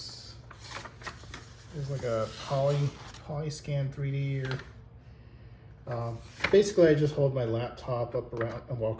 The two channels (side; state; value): both; identical; correlation 1.00